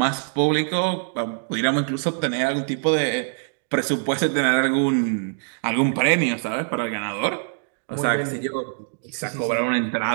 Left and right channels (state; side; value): silent; left; 63 dB below the other